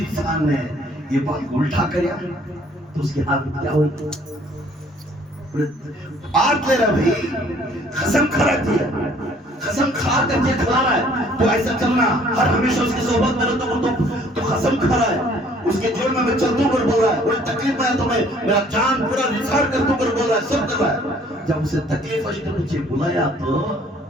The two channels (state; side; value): normal; both; correlation 0.58